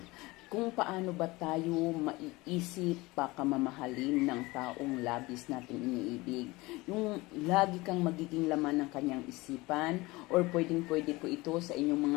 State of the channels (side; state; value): right; quieter; 21.8 dB